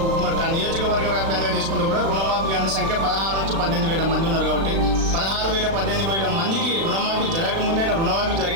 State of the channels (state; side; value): late; left; 36 ms